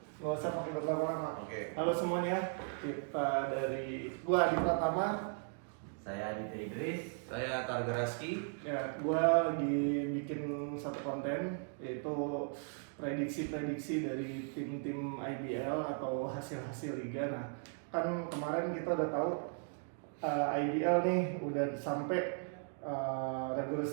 Nggak usah pakai berlama-lama. Oke. Halo semuanya, kita dari gua Adi Pratama. Saya Aditya Idris. Saya Targa Raski. Ya, gua lagi bikin satu konten yaitu prediksi-prediksi dari tim-tim IBL atau hasil-hasil liga. Nah, kan kemarin kita udah tahu IBL nih udah sampai regular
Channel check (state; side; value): silent; left; 53 dB below the other